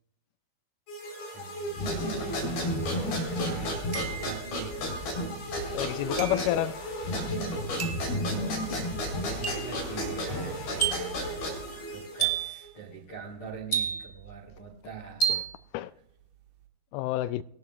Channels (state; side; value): late; right; 13 ms